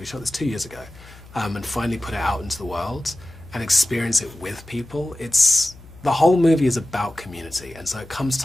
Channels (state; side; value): noise; left; hum, 20 dB below the sound